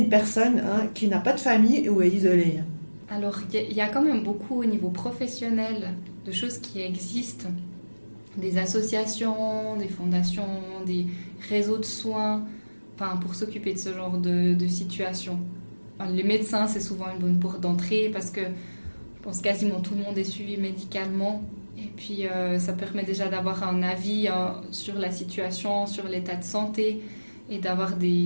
personne qui n'a pas de famille ou est isolée? Alors, il y a quand même beaucoup au niveau professionnel de choses qui existent, des associations, des fondations, des réseaux de soins, pour s'occuper de ce genre de situation. Les médecins, c'est souvent une bonne porte d'entrée parce que je pense quasiment tout le monde est suivi médicalement. Et puis, ça permet déjà d'avoir un avis sur la situation, sur l'état de santé et d'avoir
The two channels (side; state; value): both; inverted; correlation -1.00